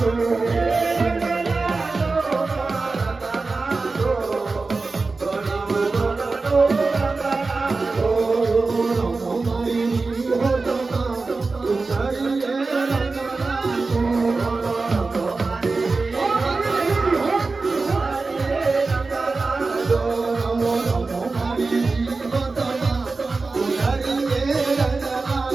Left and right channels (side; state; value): left; quieter; 3.9 dB